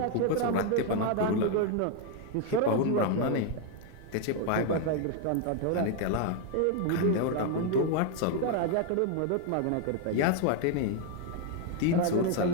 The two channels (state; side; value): different; both; correlation 0.01